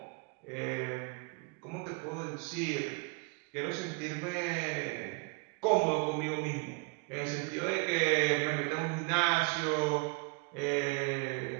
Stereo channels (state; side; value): quieter; left; 30.4 dB